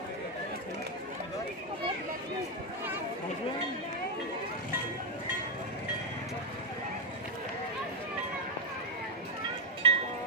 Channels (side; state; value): both; normal; correlation 0.02